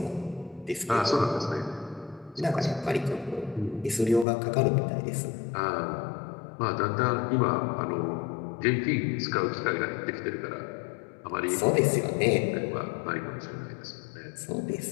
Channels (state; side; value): drops out; right; at 4.2 s